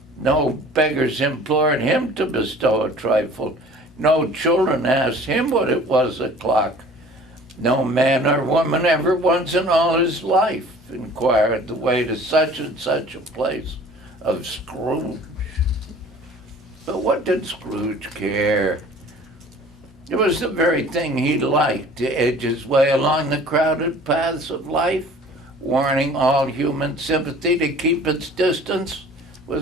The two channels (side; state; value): both; normal; correlation 0.47